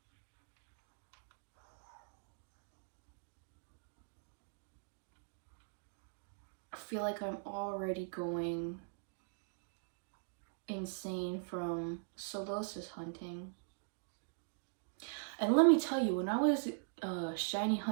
I feel like I'm already going insane from solosis hunting. And let me tell you, when I was shiny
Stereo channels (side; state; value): left; silent; digital silence